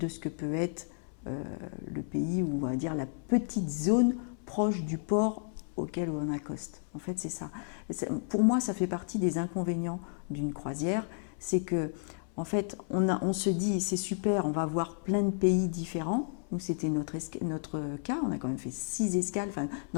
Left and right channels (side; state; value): right; silent; 56 dB below the other